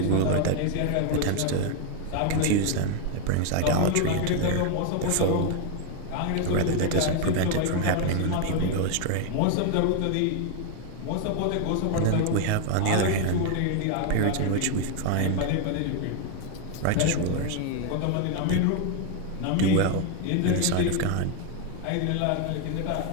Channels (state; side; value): different; both; correlation 0.00